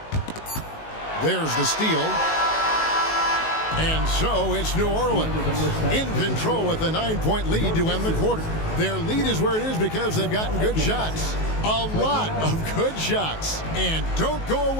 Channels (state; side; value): late; right; 19 ms